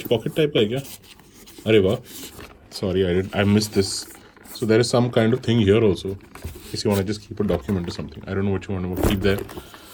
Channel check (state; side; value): identical; both; correlation 1.00